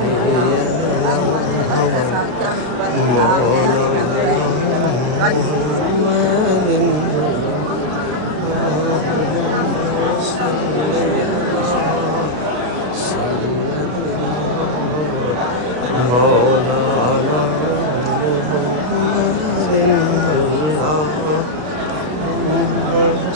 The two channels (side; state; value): left; late; 33 ms